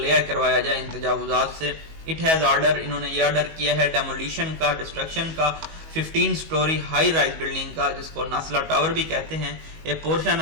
کروایا جائے ان تجاوزات سے. It has order, انہوں نے یہ آرڈر کیا ہے ڈیمولیشن کا, ڈسٹرکشن کا, 15 story high rise building کا, جس کو ناسلا ٹاور بھی کہتے ہیں. A portion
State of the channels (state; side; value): late; left; 19 ms